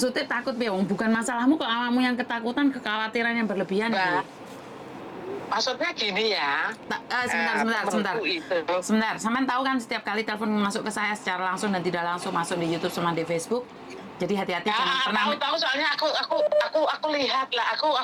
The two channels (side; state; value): both; identical; correlation 1.00